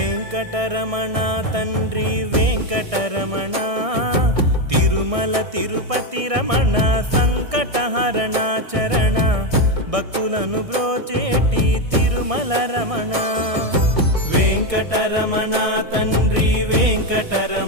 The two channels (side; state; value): left; late; 1.6 ms